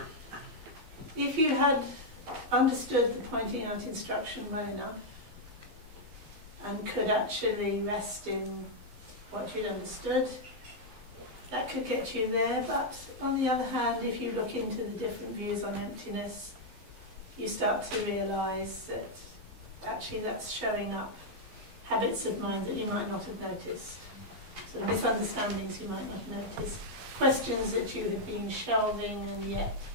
if you had understood the pointing out instruction well enough and could actually rest in what you'd understood, that could get you there. But on the other hand, if you look into the different views on emptiness, you start to realise that actually that's showing up habits of mind that you might not have noticed, sort of misunderstandings you might not have noticed, questions that you had been shelving and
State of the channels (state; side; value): late; left; 11 ms